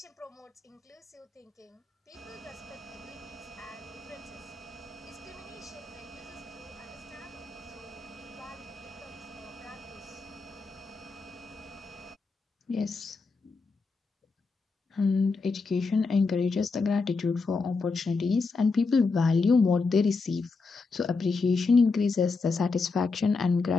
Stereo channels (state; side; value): quieter; right; 4.2 dB